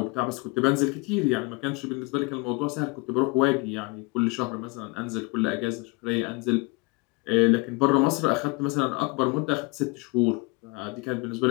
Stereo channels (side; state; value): right; quieter; 27.4 dB